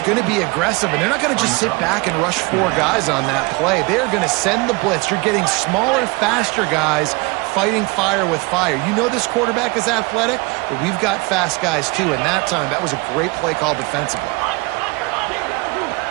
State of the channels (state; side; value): quieter; left; 26.0 dB